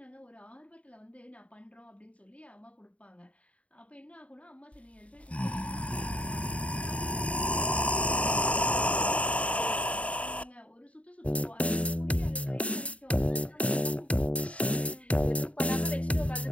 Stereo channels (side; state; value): right; late; 0.065 ms